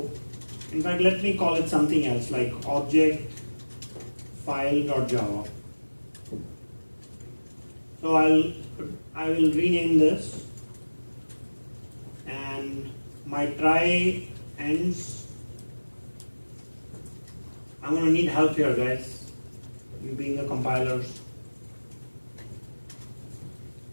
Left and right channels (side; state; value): both; inverted; correlation -1.00